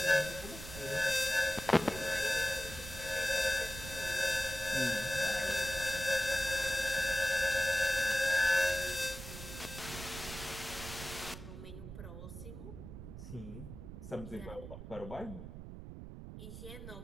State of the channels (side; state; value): right; noise; rumble, 11 dB below the sound